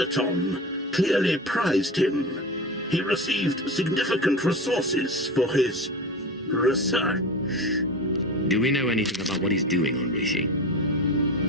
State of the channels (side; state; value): both; normal; correlation 0.29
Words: clearly prized him. He received significant resources for his research. Do we know anything about what he's doing on Rishi?